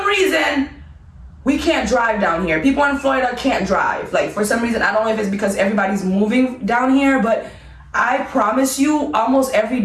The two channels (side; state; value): both; identical; correlation 1.00